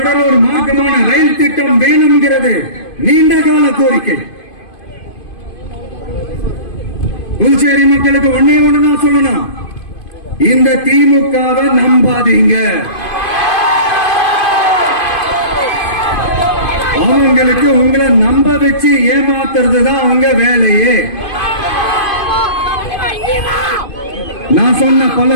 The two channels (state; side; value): late; right; 2.5 ms